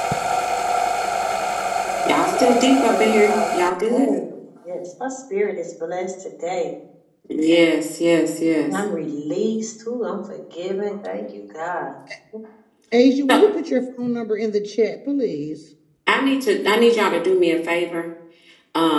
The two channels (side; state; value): both; identical; correlation 1.00